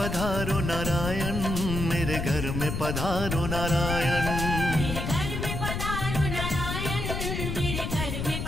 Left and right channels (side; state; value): left; noise; rumble, 3 dB below the sound